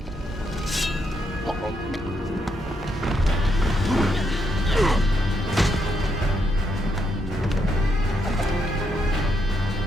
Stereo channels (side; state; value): both; normal; correlation 0.79